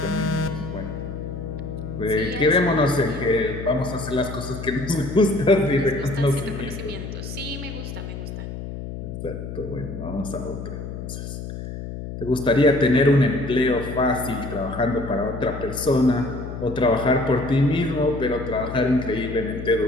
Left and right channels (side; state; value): left; noise; hum, 8 dB below the sound